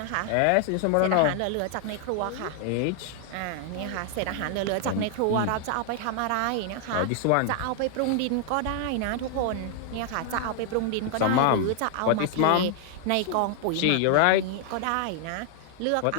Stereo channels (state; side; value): different; both; correlation 0.00